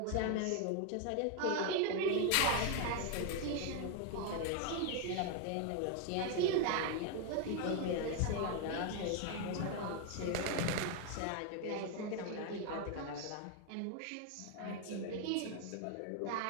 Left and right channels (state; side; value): different; both; correlation 0.01